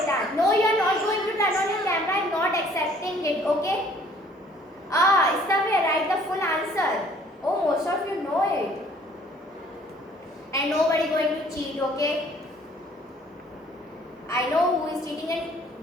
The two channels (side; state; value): both; normal; correlation 0.57